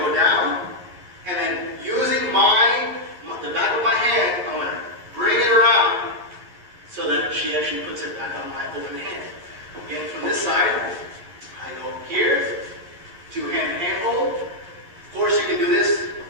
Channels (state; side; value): late; left; 11 ms